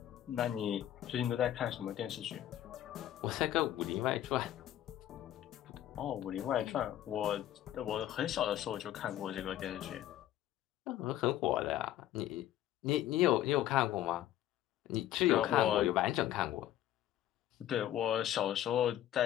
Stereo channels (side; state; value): right; quieter; 12.6 dB